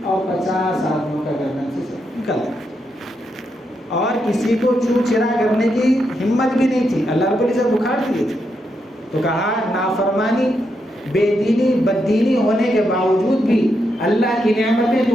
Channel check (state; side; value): normal; both; correlation 0.82